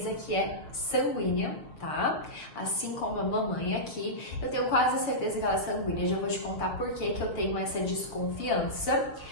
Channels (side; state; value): right; late; 6.7 ms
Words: que é sanguínea, tá? Assim como a mamãe aqui, eu tenho quase certeza que ela é sanguínea. Já vou te contar por que eu tenho essa desconfiança.